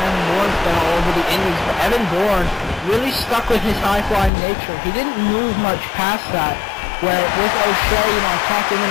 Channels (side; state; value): right; drops out; at 4.3 s